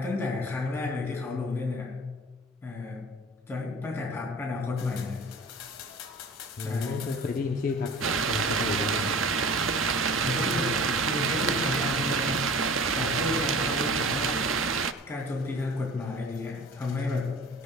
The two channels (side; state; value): both; normal; correlation 0.42